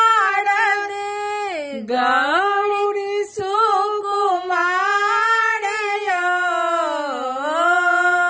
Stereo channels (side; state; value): both; identical; correlation 1.00